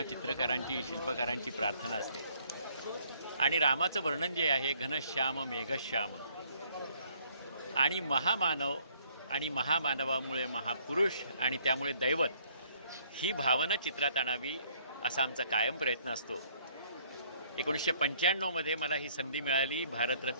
चित्रकारांची शिल्पकारांची प्रार्थना असते। आणि रामाचं वर्णन जे आहे घनश्याम मेघश्याम आणि महामानव आणि महामानवामुळे महापुरुष आणि त्यामुळे दैवत ही भावना चित्रात आणावी असा आमचा कायम प्रयत्न असतो। 1995 मध्ये मला ही संधी मिळाली।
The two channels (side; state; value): both; inverted; correlation -0.63